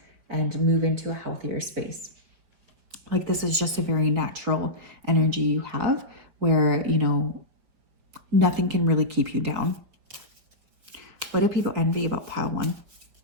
and move into a healthier space. Like this is just a very natural energy you have where, you know, nothing can really keep you down. What do people envy about pile 1?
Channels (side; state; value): left; late; 4.8 ms